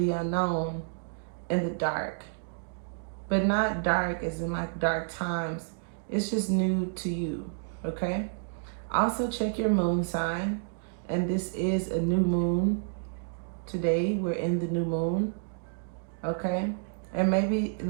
unknown in the dark. But not dark as in like dark times. It's just new to you, okay? Also check your moon sign. And this is a new moon. Today we're in the new moon, okay? And maybe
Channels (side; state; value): left; silent; digital silence